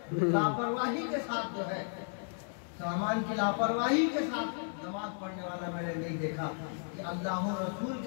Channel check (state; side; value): silent; right; 55 dB below the other